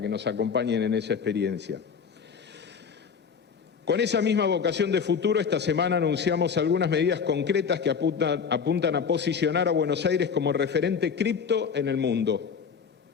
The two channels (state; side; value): quieter; right; 6.3 dB